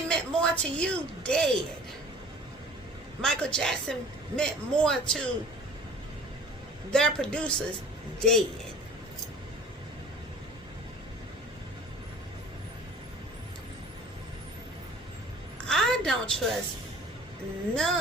more to you dead. Michael Jackson meant more to their producers dead. I don't trust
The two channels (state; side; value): normal; both; correlation 0.46